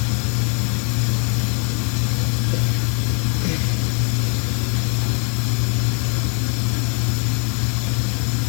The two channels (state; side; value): quieter; right; 37.9 dB